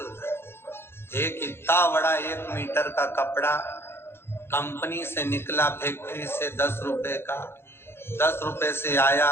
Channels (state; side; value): late; right; 0.11 ms